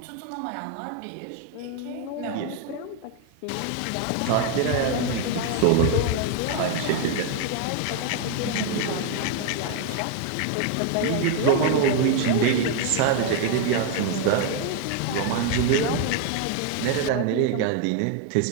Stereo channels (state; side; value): different; both; correlation 0.01